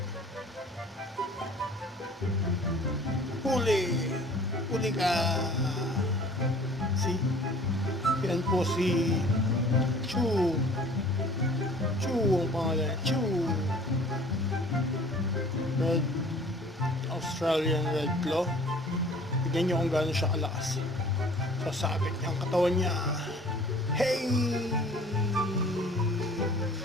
Huli. Huli ka. See? Yan po si Chu. Chu ang pangalan. Chu. Red Australian Red Claw. Tignan nyo kung gaano siya kalakas. Sasabit niya ang katawan niya. Hey!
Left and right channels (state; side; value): normal; both; correlation 0.50